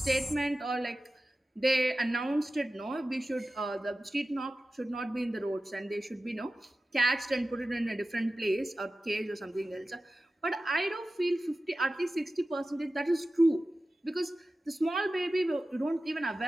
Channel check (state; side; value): normal; both; correlation 0.95